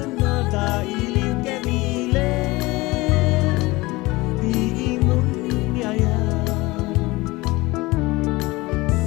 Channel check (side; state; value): right; quieter; 21.6 dB